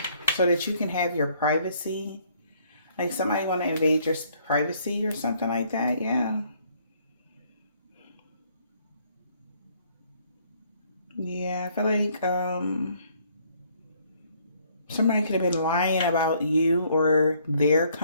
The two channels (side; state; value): both; inverted; correlation -0.65